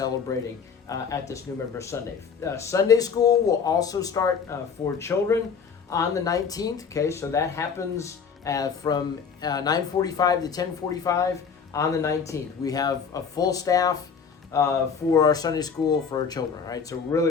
at this new member Sunday. Sunday school will also start for children on the 19th, okay, so that happens from 9:45 to 10:45 on the 19th. We have a full staff for our Sunday school for our children, right? So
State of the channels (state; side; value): quieter; right; 6.2 dB